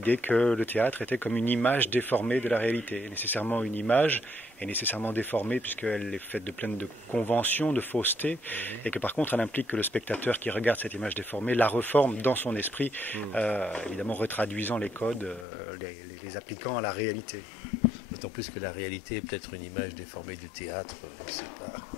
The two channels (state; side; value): drops out; right; at 15.5 s